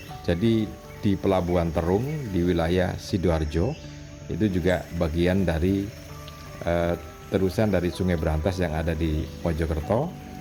Jadi di Pelabuhan Terung di wilayah Sidoarjo, itu juga bagian dari terusan dari Sungai Brantas yang ada di Mojokerto.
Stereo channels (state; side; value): identical; both; correlation 1.00